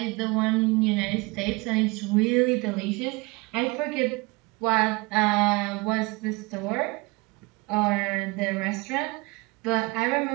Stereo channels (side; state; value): left; quieter; 25.5 dB